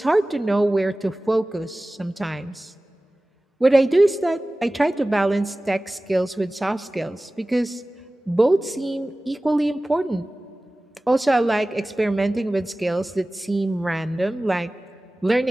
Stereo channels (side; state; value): both; normal; correlation 0.97